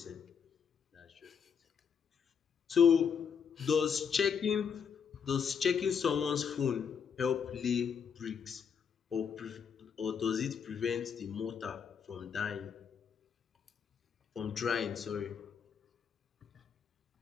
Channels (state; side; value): quieter; right; 6.9 dB